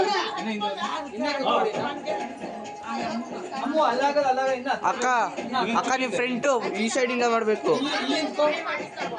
ಅಕ್ಕ ಅಕ್ಕ ನಿಮ್ಮ ಫ್ರೆಂಟು ಈ ಸೈಡಿಂದ ಮಾಡಬೇಕು.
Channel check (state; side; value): identical; both; correlation 1.00